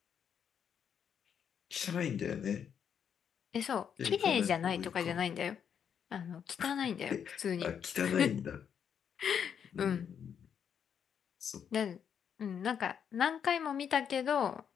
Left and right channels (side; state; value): right; quieter; 7.9 dB